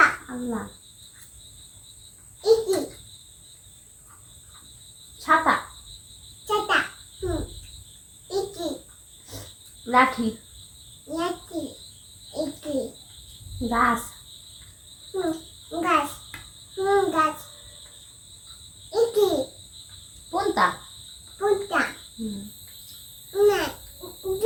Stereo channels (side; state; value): both; identical; correlation 1.00